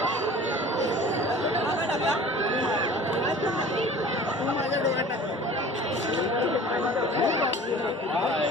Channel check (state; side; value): normal; both; correlation 0.43